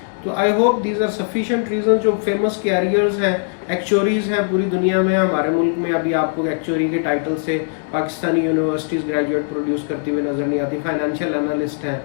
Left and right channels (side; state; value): right; silent; digital silence